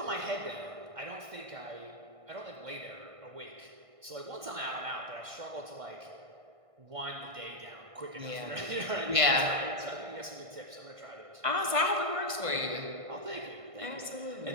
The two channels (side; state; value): left; late; 1.5 ms